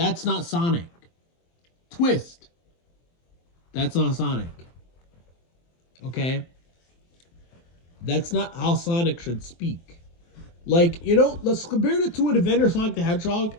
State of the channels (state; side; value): late; right; 23 ms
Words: not Sonic. Twist. That's not Sonic. Okay? That's not how Sonic should speak. Like, let's compare it to an Adventure Sonic the Hedgehog